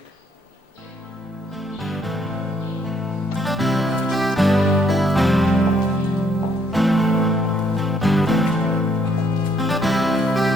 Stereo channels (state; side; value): normal; both; correlation 0.69